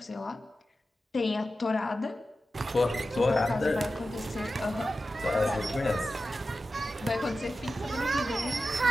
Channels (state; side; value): normal; both; correlation 0.92